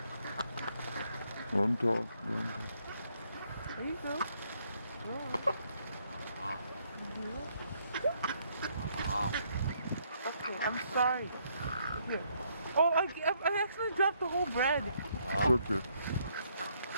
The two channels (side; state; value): both; inverted; correlation -0.71